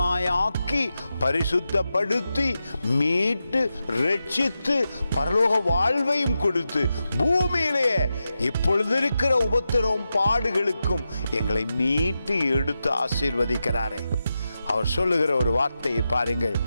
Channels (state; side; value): inverted; both; correlation -0.90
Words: பரிசுத்தப்படுத்தி மீட்டு ரட்சித்து பரலோக வாழ்வையும் கொடுத்து பூமியிலே இப்பொழுது இருக்கிற உபத்திரவம் பாடுகளுக்கும் எங்களை மீட்டு எடுத்து ஆசீர்வதிக்கிறாரே. அவர் சொல்லுகிற ஒரு வார்த்தையை பாருங்கள்.